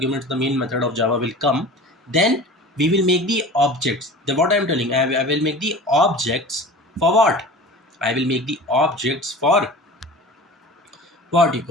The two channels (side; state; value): both; normal; correlation 0.37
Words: the main method of Java will come. Then we will make the objects. The what I am telling, I will make the objects for what? I will make the objects for what you